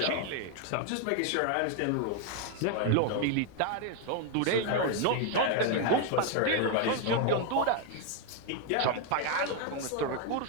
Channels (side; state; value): both; different; correlation 0.01